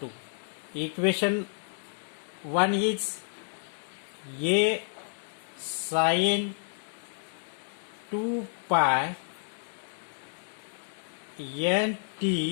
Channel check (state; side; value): silent; right; digital silence